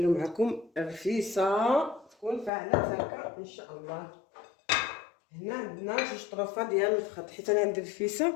معكم الرفيسه تكون فاعله هكا ان شاء الله. هنا عندنا جوج طروفه ديال الخط، حيت انا عندي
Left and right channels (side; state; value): right; drops out; at 2.5 s